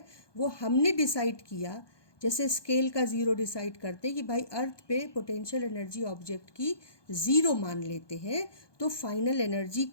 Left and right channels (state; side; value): late; right; 1.2 ms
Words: वो हमने डिसाइड किया, जैसे स्केल का ज़ीरो डिसाइड करते कि भाई अर्थ पे पोटेंशियल एनर्जी ऑब्जेक्ट की ज़ीरो मान लेते हैं, तो फाइनल एनर्जी